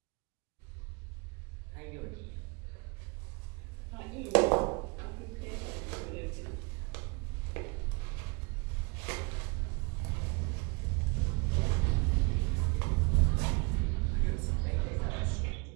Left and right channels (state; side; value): quieter; left; 30.3 dB